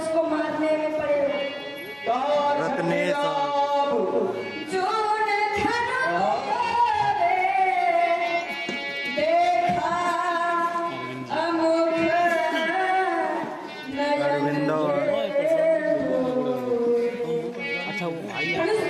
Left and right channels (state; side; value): identical; both; correlation 1.00